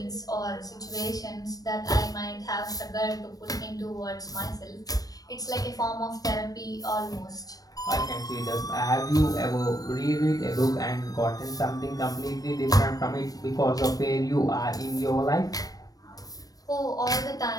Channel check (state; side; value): late; right; 0.18 ms